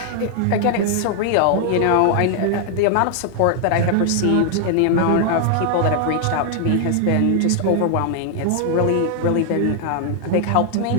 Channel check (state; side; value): different; both; correlation 0.00